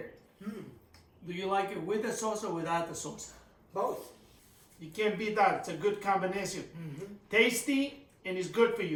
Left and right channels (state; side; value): identical; both; correlation 1.00